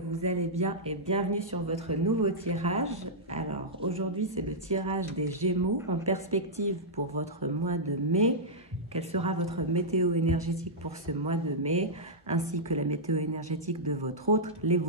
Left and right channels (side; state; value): both; normal; correlation -0.10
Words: allez bien et bienvenue sur votre nouveau tirage. Alors aujourd'hui c'est le tirage des Gémeaux en perspective pour votre mois de mai. Quelle sera votre météo énergétique pour ce mois de mai, ainsi que la météo énergétique de votre autre,